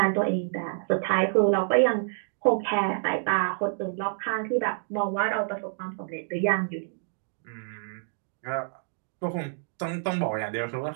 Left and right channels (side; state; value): left; silent; digital silence